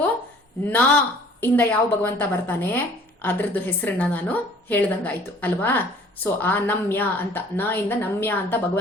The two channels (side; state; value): both; normal; correlation 0.53